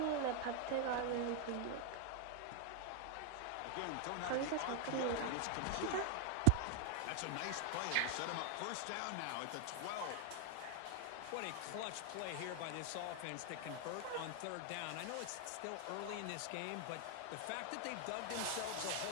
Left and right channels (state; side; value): different; both; correlation 0.00